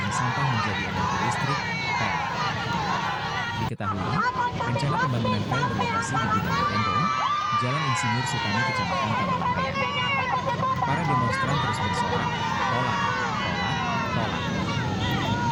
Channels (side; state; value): both; identical; correlation 1.00